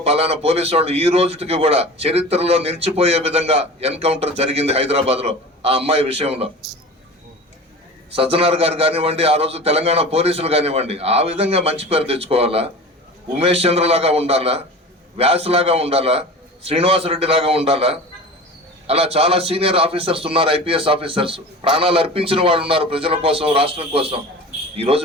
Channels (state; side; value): normal; both; correlation 0.35